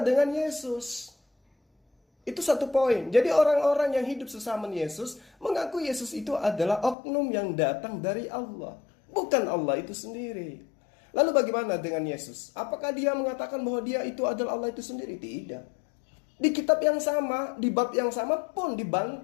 dengan Yesus. Itu satu poin. Jadi orang-orang yang hidup sesama Yesus mengaku Yesus itu adalah oknum yang datang dari Allah, bukan Allah itu sendiri. Lalu bagaimana dengan Yesus? Apakah dia mengatakan bahwa dia itu adalah Allah itu sendiri? Tidak. Di kitab yang sama, di bab yang sama pun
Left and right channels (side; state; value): right; drops out; at 7.0 s